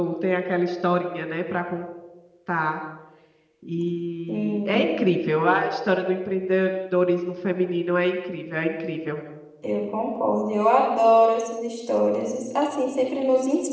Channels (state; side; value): identical; both; correlation 1.00